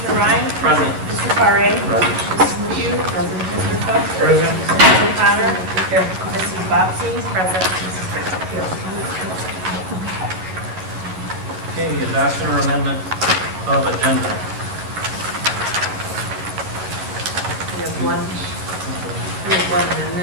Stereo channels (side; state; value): left; late; 11 ms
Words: Ryan? Present. Mr. Paré? Present. Mrs. McHugh? Present. Mr. Cook? Present. Mrs. O'Connor? Here. Mrs. Bobbsey? Present. Mrs. Bishop? Here. Okay, adoption or amendment of agenda. We have one